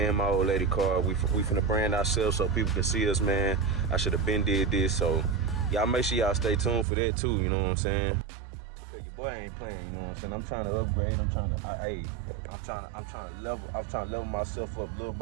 my old lady car. We finna brand ourselves so people can see us, man. I should have been did this, so y'all make sure y'all stay tuned for that too, you know what I'm saying? Because your boy ain't playing, you know what I'm saying? I'm trying to upgrade, I'm trying to level myself up little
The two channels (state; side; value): drops out; left; at 6.9 s